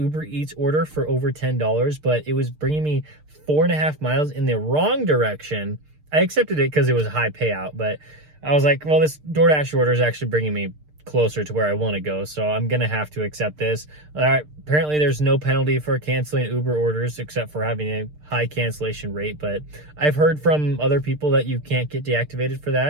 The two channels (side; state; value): left; late; 6.6 ms